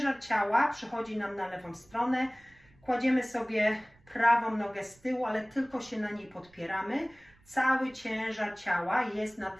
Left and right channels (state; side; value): noise; right; rumble, 29 dB below the sound